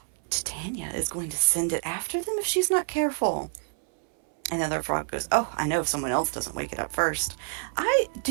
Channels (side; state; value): left; silent; 60 dB below the other